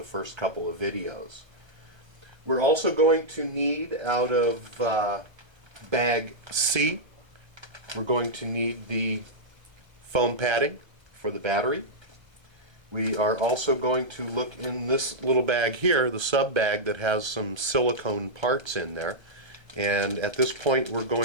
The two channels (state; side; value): late; left; 1.3 ms